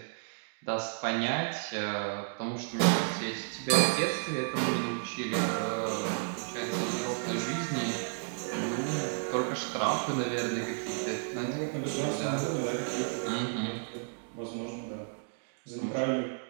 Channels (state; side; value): silent; left; digital silence